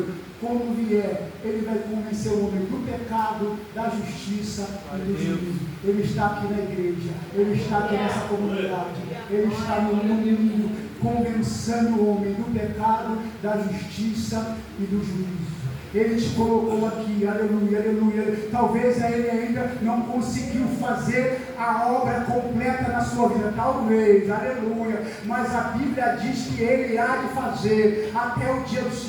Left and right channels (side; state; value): both; identical; correlation 1.00